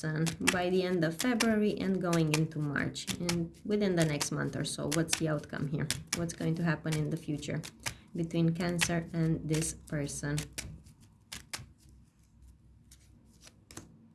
by the end of February and going into March, and within the next month or so? What's the outcome here? What's going to happen in the future between Cancer and this person?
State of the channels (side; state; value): both; identical; correlation 1.00